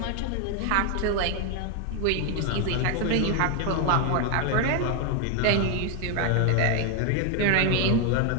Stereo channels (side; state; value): both; different; correlation 0.01